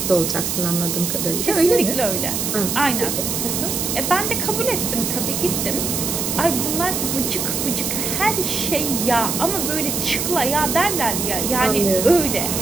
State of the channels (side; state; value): right; noise; hiss, 1 dB below the sound